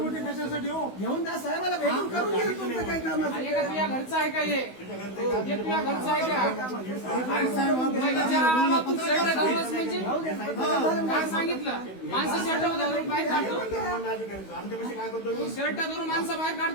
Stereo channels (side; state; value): right; late; 16 ms